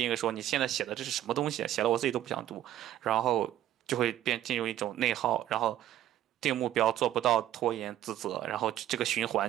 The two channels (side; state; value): left; quieter; 12.6 dB